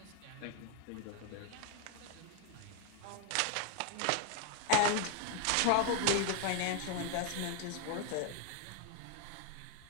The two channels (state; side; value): different; both; correlation 0.01